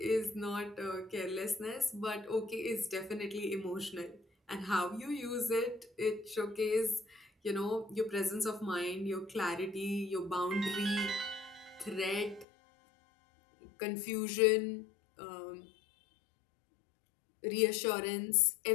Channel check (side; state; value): right; drops out; at 12.5 s